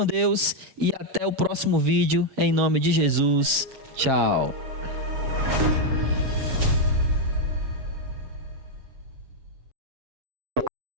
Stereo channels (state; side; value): late; left; 7.4 ms